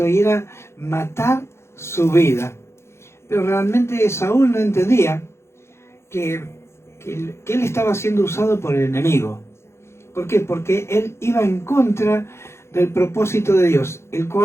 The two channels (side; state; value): right; late; 0.13 ms